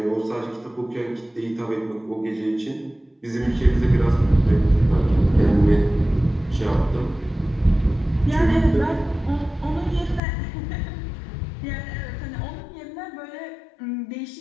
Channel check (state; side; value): drops out; right; at 10.2 s